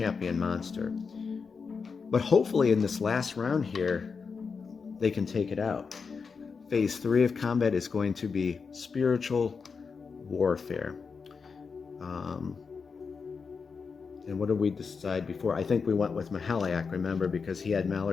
monster. But hopefully in this last round here, they can take it out. Phase 3 of combat is going to be spiritual warfare. And what did we decide before? I think we went with Mahaliak, remember, because he had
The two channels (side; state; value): right; quieter; 5.3 dB